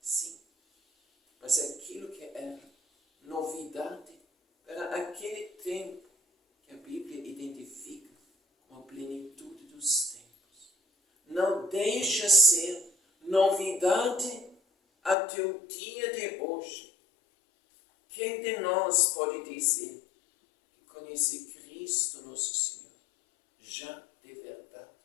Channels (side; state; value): right; drops out; at 15.2 s